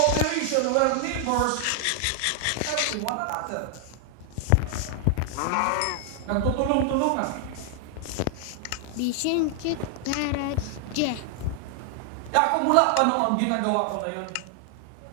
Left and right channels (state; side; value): different; both; correlation 0.00